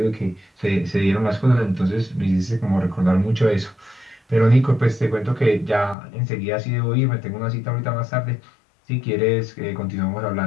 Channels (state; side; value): drops out; right; at 6.0 s